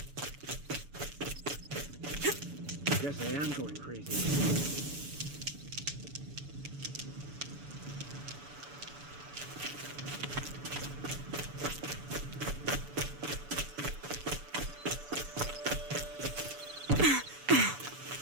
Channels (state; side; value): late; left; 6.9 ms